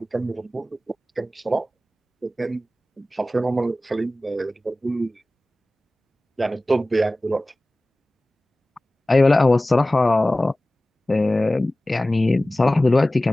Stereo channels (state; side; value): normal; both; correlation 0.97